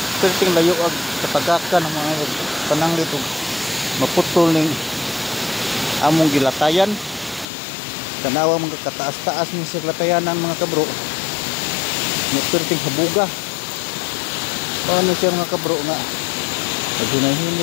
Perting layo ag katagakan ang mga pananglit ug maputol ning among gilatayan. Tanawa mga kataas-taas ni sa latayanan mga kabro. Perting habuga. Paano siya mga kabro nga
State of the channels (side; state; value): right; drops out; at 7.5 s